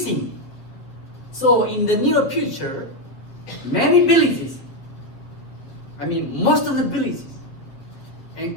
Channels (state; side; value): late; right; 7.7 ms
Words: So in the near future, many villages, most of the villages and